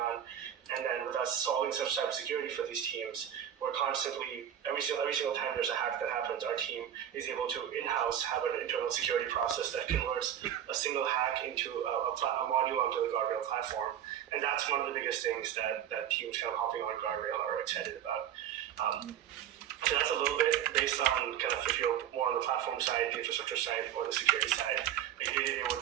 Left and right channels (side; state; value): left; quieter; 10.2 dB